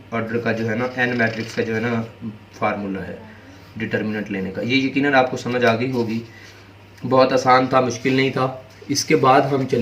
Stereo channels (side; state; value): both; identical; correlation 1.00